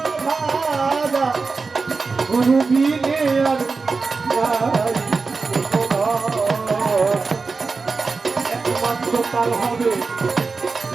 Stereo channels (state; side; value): quieter; left; 4.3 dB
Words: ভাজা গুরু বিনে আর একমাত্র তার হবে